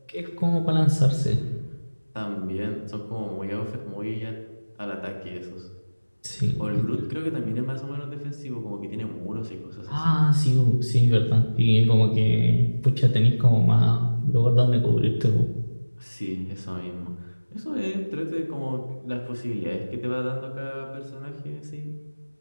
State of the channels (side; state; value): both; inverted; correlation -1.00